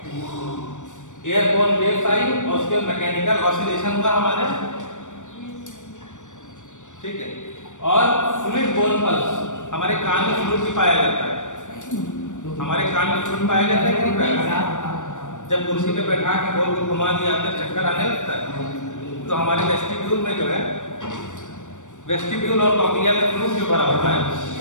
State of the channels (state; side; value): late; right; 0.86 ms